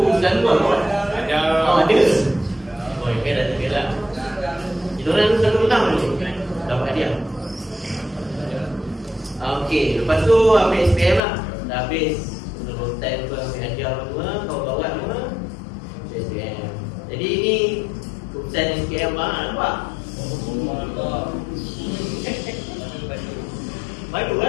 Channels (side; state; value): right; drops out; at 11.2 s